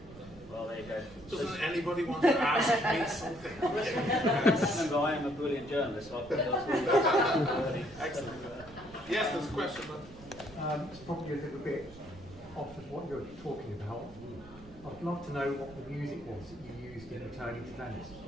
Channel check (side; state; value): right; noise; rumble, 20 dB below the sound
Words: Well, there you go. Doesn't anybody want to ask me something? Remember, I am a brilliant journalist, so I think that's really excellent. Yes, there's a question. It's probably a little bit off of what you're talking about. I'd love to know what the music was that you used in returning to Venice.